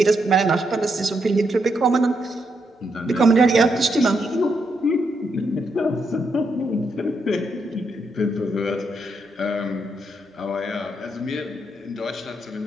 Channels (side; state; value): both; normal; correlation 0.79